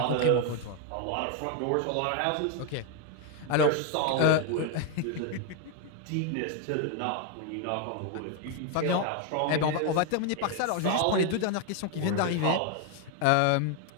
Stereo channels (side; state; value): both; different; correlation 0.01